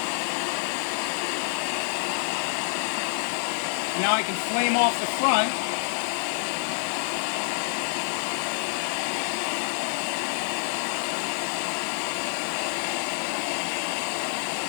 Now I can flame off the front.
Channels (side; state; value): right; silent; 60 dB below the other